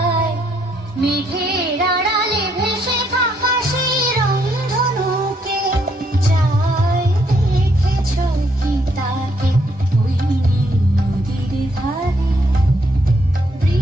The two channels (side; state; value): both; normal; correlation 0.72